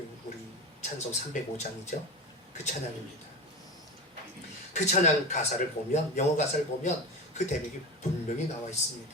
우리 찬송 305장이죠. 그 찬양입니다. 그 찬양 가사를 보면, 영어 가사를 보면 그 대목이 분명히 나와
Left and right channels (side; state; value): both; normal; correlation 0.24